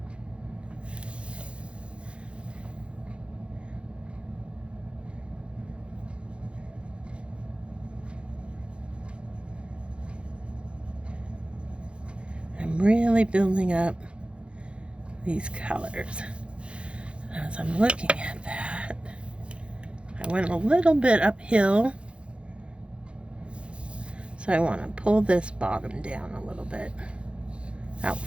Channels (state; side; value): late; left; 0.058 ms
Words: I'm really building up these colors. As I'm looking at that, I went a little bit uphill, so I want to pull this bottom down a little bit out